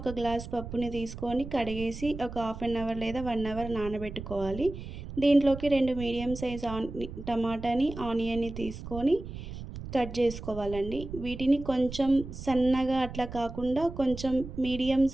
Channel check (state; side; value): noise; right; rumble, 10 dB below the sound